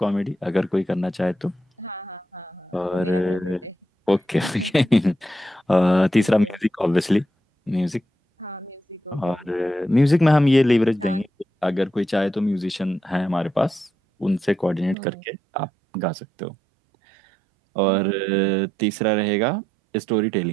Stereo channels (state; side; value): drops out; left; at 15.0 s